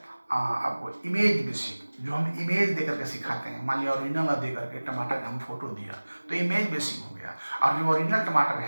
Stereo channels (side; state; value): both; inverted; correlation -1.00